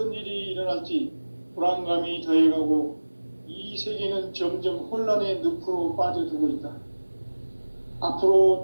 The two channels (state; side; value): inverted; both; correlation -1.00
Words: 일이 일어날지 불안감이 더해가고 이 세계는 점점 혼란의 늪으로 빠져들고 있다. 앞으로